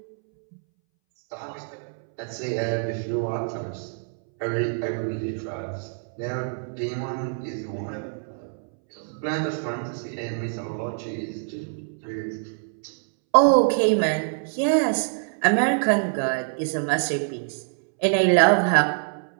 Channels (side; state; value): left; silent; 62 dB below the other